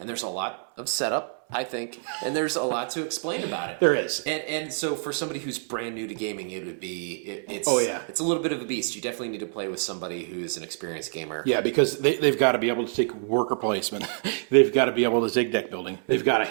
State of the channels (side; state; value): left; silent; 60 dB below the other